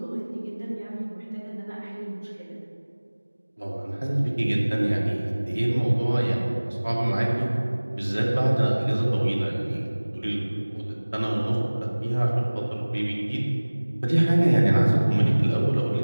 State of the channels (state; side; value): inverted; both; correlation -1.00